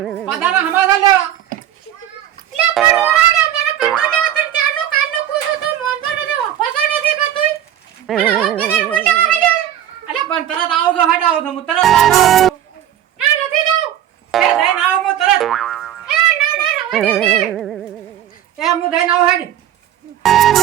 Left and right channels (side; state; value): left; quieter; 11.2 dB